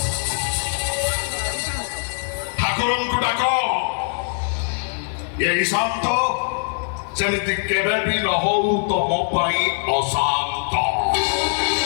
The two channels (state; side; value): silent; right; 64 dB below the other